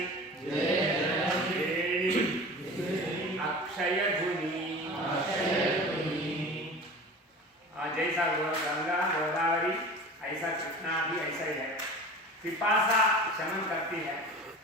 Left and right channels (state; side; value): normal; both; correlation 0.36